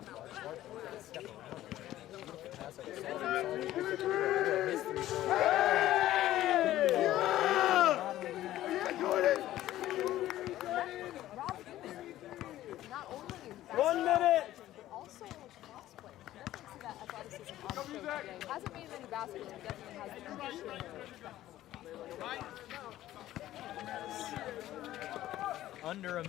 Not only 1 minute. also cross-play. Definitely see that athleticism on the field today. Hasn't made it in the basket, but definitely has the conditioning. under a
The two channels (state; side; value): quieter; right; 14.1 dB